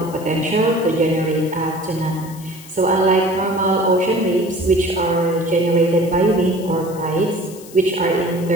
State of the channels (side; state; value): left; noise; hiss, 19 dB below the sound